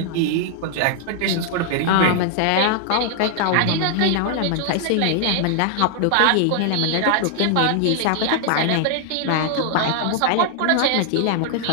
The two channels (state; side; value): different; both; correlation 0.00